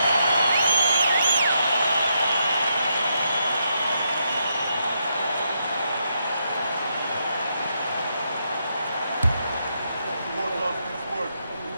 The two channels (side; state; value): both; inverted; correlation -0.80